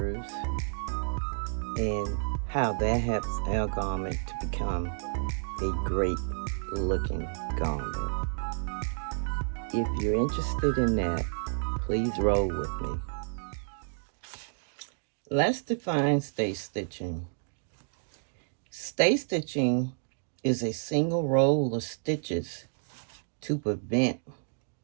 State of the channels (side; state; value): left; silent; digital silence